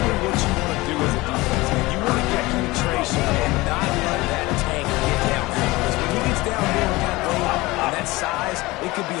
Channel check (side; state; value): right; quieter; 20.9 dB